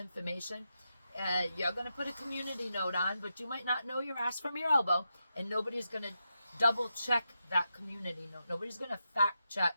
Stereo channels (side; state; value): both; inverted; correlation -0.87